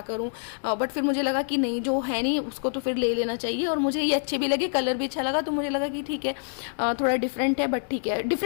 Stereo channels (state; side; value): silent; right; digital silence